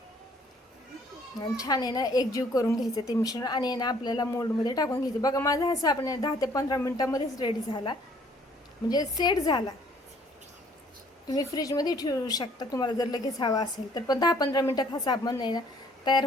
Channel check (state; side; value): normal; both; correlation 0.60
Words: आणि छान आहे ना एकजीव करून घ्यायचं ते मिश्रण आणि ना आपल्याला मोल्डमध्ये टाकून घ्यायचं. बघा, माझा हा साबण 10 ते 15 मिनिटामध्येच रेडी झाला, म्हणजे सेट झाला. तुम्ही फ्रीजमध्ये ठेवू शकता तुम्हाला जर लगेच हवा असेल तर, पण 10-15 मिनिटात हा साबण आहे ना तयार